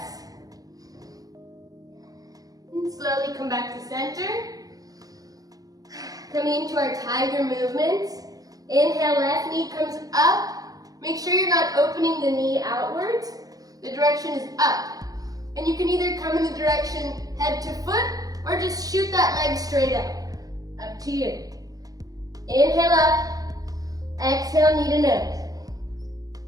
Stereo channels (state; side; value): late; left; 0.18 ms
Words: And slowly come back to center. Coming into our tiger movements. Inhale, left knee comes up. Make sure you're not opening the knee outwards. The direction is up. And you can either come in the direction head to foot or just shoot that leg straight up. Up to you. Inhale up. Exhale, knee to nose.